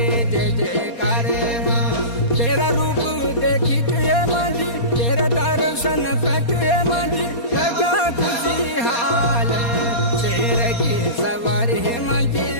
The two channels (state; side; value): late; right; 4.2 ms